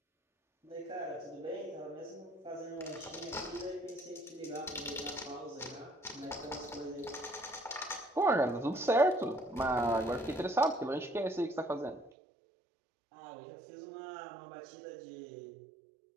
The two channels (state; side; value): drops out; left; at 12.1 s